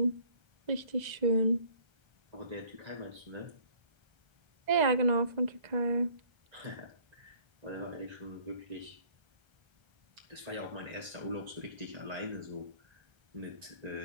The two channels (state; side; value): late; left; 1.3 ms